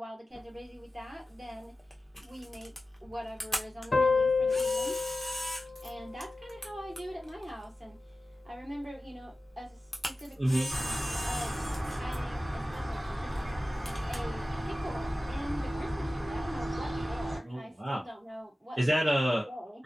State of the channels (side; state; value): both; normal; correlation 0.95